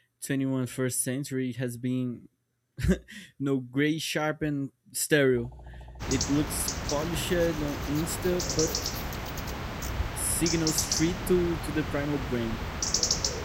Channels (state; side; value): identical; both; correlation 1.00